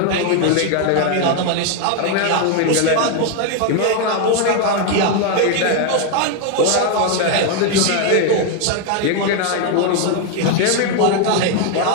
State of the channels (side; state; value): both; different; correlation 0.01